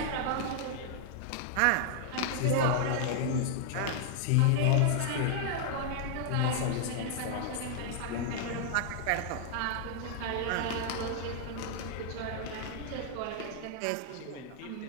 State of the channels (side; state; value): both; different; correlation 0.00